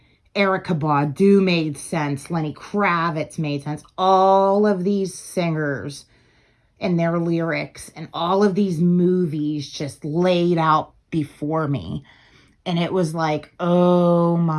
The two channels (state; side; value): identical; both; correlation 1.00